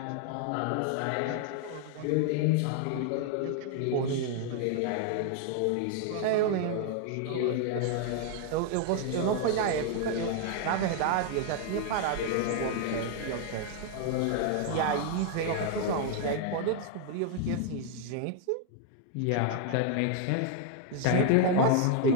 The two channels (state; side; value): different; both; correlation 0.00